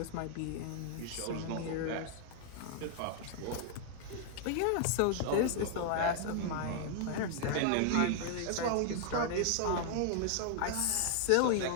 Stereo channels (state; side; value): different; both; correlation -0.01